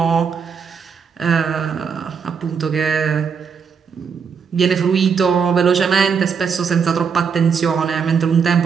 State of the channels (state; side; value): quieter; left; 6.3 dB